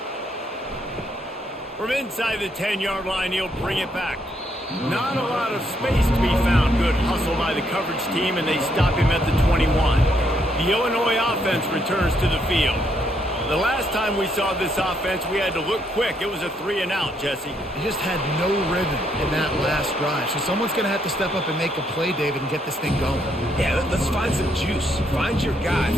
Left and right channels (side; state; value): both; normal; correlation 0.74